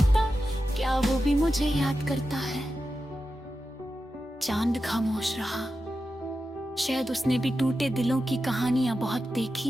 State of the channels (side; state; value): both; normal; correlation 0.91